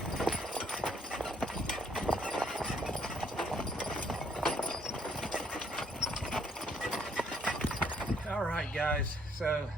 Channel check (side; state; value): both; normal; correlation 0.67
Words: All right, guys, so